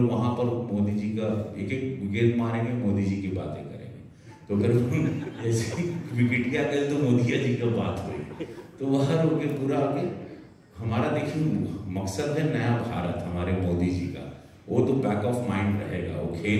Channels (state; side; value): identical; both; correlation 1.00